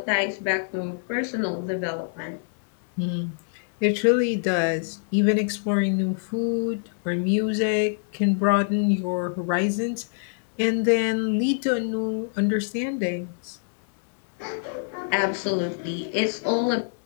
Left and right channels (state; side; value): silent; right; 61 dB below the other